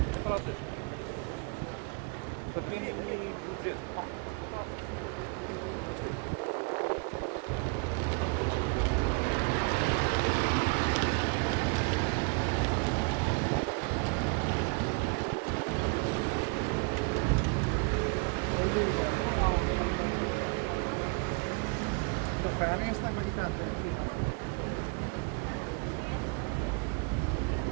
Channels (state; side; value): quieter; left; 34.7 dB